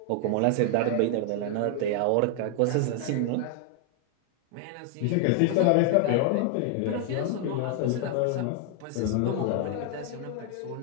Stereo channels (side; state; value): both; different; correlation 0.00